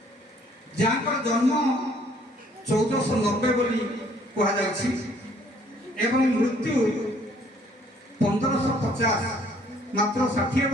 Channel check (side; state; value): both; normal; correlation 0.61